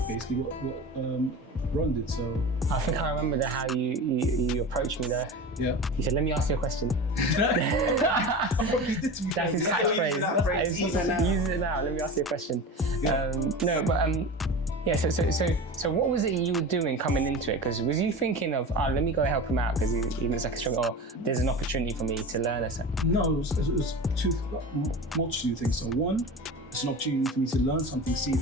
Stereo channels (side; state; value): both; normal; correlation 0.31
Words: basically what Ron did. So I think I remember how you approached me there. Yeah. He said, "Let me ask you a question." What you did to me. That's his catchphrase. Use it now. Let me ask you a question. Yeah. No, but yeah. So what was it you were doing coming into it? Because was you thinking of, let me go help him out because he looks like a struggle, or there's an opportunity for me to learn or something? No, it was multitude of things. So one, it's an opportunity for me to learn something, see if